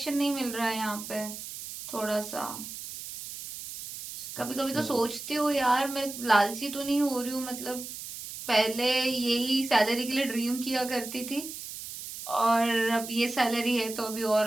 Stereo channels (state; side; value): noise; right; hiss, 10 dB below the sound